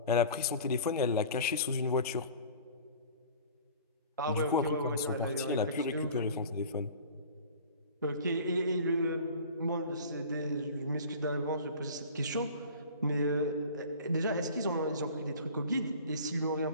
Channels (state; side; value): inverted; both; correlation -0.42